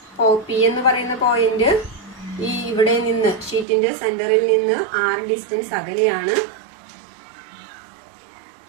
പി എന്ന് പറയുന്ന പോയിന്റ് ഈ ഇവിടെ നിന്ന് ഷീറ്റിന്റെ സെന്ററിൽ നിന്ന് r ഡിസ്റ്റൻസ് അകലെയാണ്.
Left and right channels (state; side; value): drops out; left; at 3.7 s